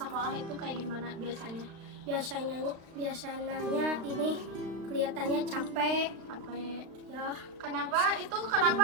itu kayak gimana biasanya? Biasanya ini kelihatannya capek. Apa Ya, Kenapa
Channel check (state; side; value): late; left; 36 ms